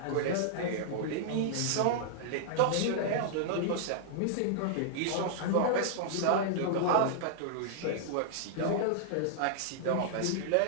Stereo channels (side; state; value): both; different; correlation -0.01